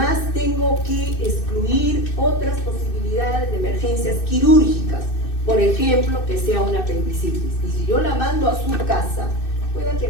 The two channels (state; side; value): late; right; 2.6 ms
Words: tengo que excluir otras posibilidades de emergencias quirúrgicas. Por ejemplo, que sea una apendicitis. Y si yo la mando a su casa, pueda que